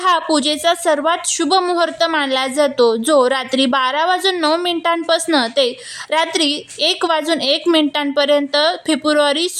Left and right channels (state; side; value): identical; both; correlation 1.00